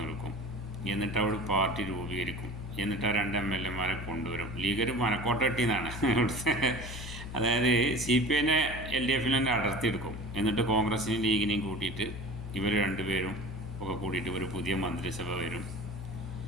നിൽക്കും. എന്നിട്ട് അവിടെ പാർട്ടി രൂപീകരിക്കും. എന്നിട്ട് ആ രണ്ട് എം എൽ എമാരെ കൊണ്ടുവരും. ലീഗർ മനക്കോട്ട കെട്ടിയെന്നാണ് ഇവിടുത്തെ. അതായത് സി പി ഐനെ എൽ ഡി എഫിൽ തന്നെ അടർത്തിയെടുക്കും. എന്നിട്ട് കോൺഗ്രസിനെയും ലീഗിനെയും കൂട്ടിയിട്ട് ഇവർ രണ്ടുപേരും ഒക്കെ കൂട്ടിയിട്ട് ഒരു പുതിയ മന്ത്രിസഭ വരും.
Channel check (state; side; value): noise; left; hum, 9 dB below the sound